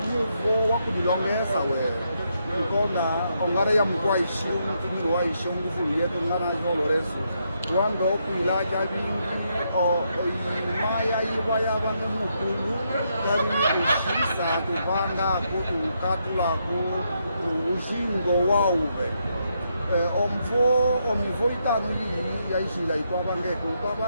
wakudilongesa we ikona ongara ya mkwaishi mkini waishi nguvu yetu ngana zoloreso wando kwila javingi imaya iwa yavano mukulu javini kushisa kuvanga kutukatulako uzingo wauve omivo itano iyi yaizila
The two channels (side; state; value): both; inverted; correlation -0.79